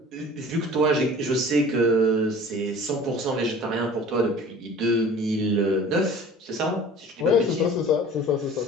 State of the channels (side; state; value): both; normal; correlation 0.44